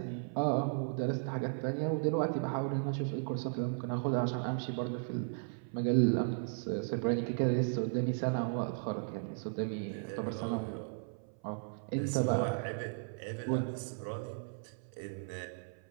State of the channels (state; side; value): silent; left; 54 dB below the other